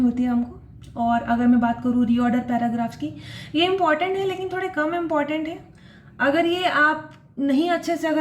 है हमको। और अगर मैं बात करूँ रीऑर्डर पैराग्राफ्स की, ये इंपॉर्टेंट है लेकिन थोड़े कम इंपॉर्टेंट है। अगर ये आप नहीं अच्छे से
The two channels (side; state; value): both; identical; correlation 1.00